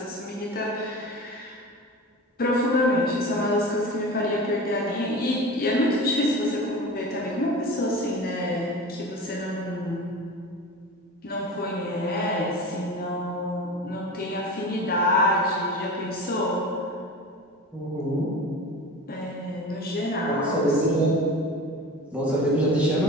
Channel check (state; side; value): normal; both; correlation 0.33